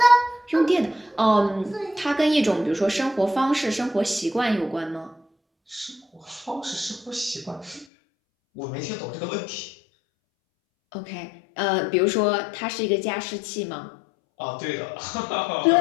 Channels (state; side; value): drops out; right; at 7.9 s